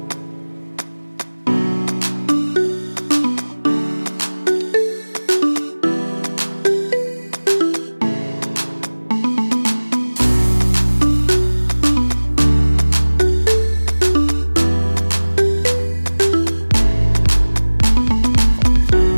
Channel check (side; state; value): both; inverted; correlation -1.00